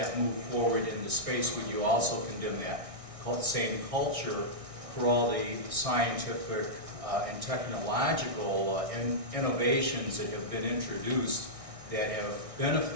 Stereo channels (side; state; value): left; late; 1.6 ms